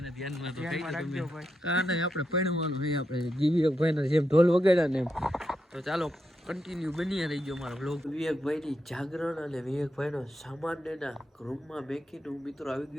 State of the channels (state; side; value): normal; both; correlation 0.84